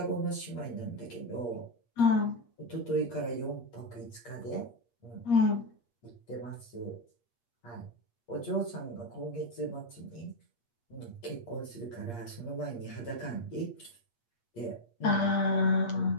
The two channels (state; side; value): late; right; 8.5 ms